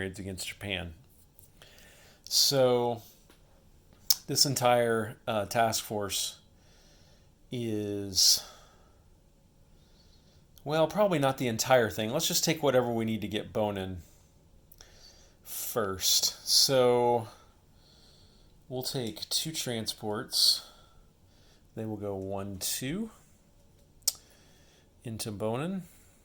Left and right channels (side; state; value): both; identical; correlation 1.00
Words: against Japan. So this entire task force is, well, probably not the entire thing. Let's just take whatever we need to get Bonin first. So we'll take 2 transports. They will go 1, 2 into Bonin,